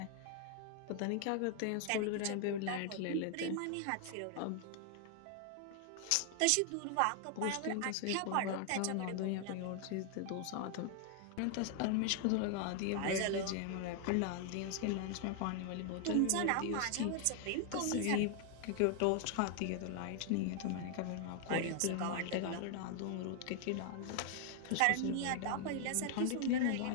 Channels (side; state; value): both; different; correlation 0.00